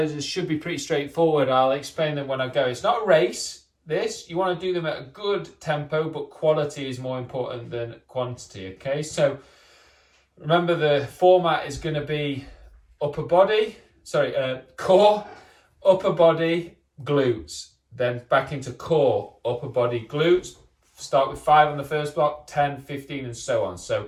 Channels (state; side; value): identical; both; correlation 1.00